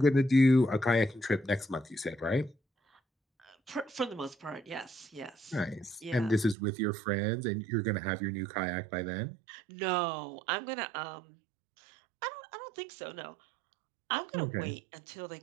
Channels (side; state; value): left; drops out; at 6.6 s